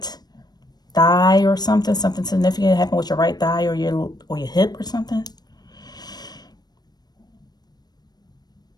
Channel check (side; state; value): right; late; 0.19 ms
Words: thigh or something significant happened with your right thigh or your hip or something.